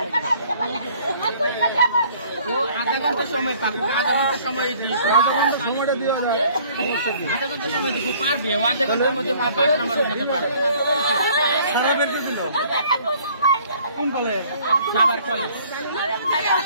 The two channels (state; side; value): inverted; both; correlation -0.57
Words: আধা ঘন্টা সময় পাকুক, আধা ঘন্টা সময় দিই, সময়টা দিয়ে আধা ঘন্টা সময় দিব পারবে, ও আধা ঘন্টার মধ্যে 5 নাম্বার উঠাতে পারবে। কোন কলেজ? সাভার কলেজ।